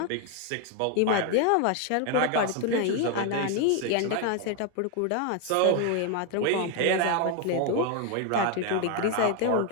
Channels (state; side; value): different; both; correlation 0.01